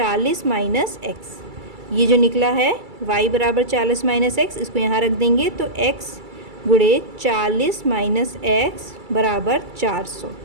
माइनस एक्स। ये जो निकला है y बराबर 40 माइनस एक्स, इसको यहाँ रख देंगे तो x गुणे 40 माइनस एक्स बराबर 400।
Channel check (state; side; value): late; left; 2.3 ms